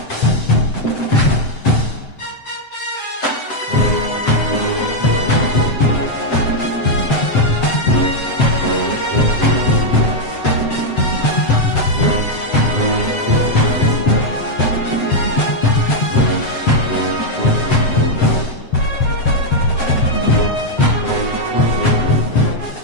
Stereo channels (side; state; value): right; late; 7.8 ms